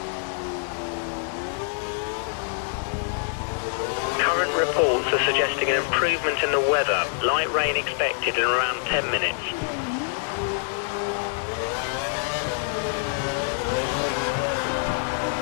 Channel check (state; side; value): silent; right; digital silence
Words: Reports are suggesting an improvement in the weather. Light rain expected in around 10 minutes.